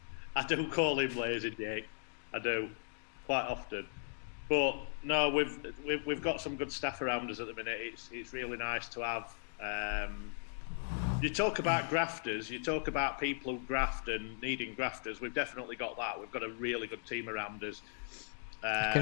I do call him Lazy Jake. I do, quite often. But no, we've got some good staff around us at the minute. It's really nice to have. You talk about grafters. You talk about people who graft and needing grafters. We've definitely got that. We've got a really good team around us. I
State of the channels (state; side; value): silent; right; digital silence